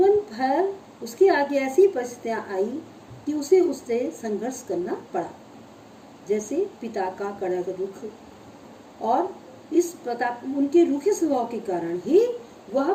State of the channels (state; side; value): identical; both; correlation 1.00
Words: भर उसके आगे ऐसी परिस्थितियां आई कि उसे उससे संघर्ष करना पड़ा, जैसे पिता का कड़क रुख, और इस प्रताप उनके रूखे स्वभाव के कारण ही वह